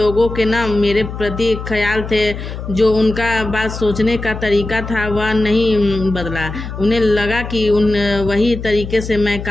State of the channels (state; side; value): noise; left; hum, 8 dB below the sound